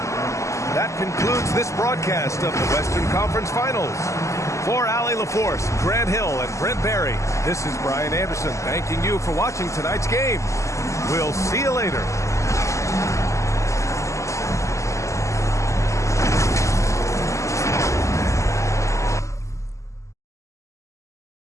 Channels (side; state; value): right; late; 0.15 ms